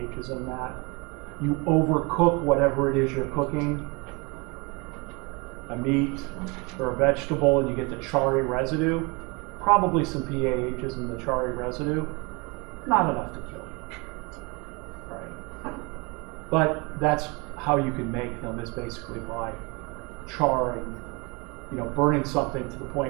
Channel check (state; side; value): quieter; left; 28.6 dB